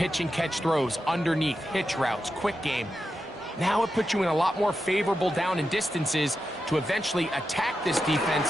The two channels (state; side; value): normal; both; correlation 0.89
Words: and catch throws underneath, hitch routes, quick game, now it puts you in a lot more favorable down and distances to eventually attack this